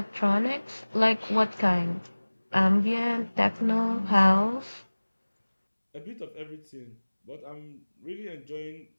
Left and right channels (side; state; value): both; inverted; correlation -1.00